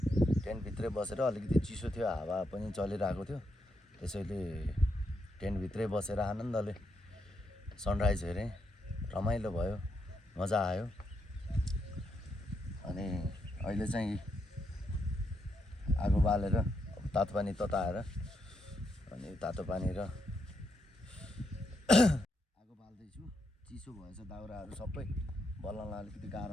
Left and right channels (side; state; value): both; normal; correlation 0.80